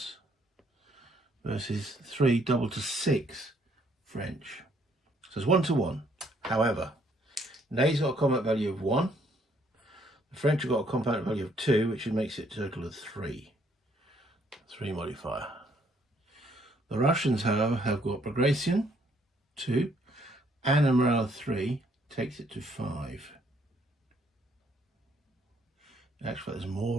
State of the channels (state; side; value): normal; both; correlation 0.67